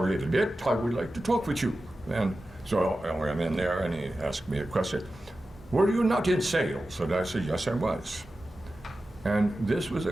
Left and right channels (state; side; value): normal; both; correlation 0.93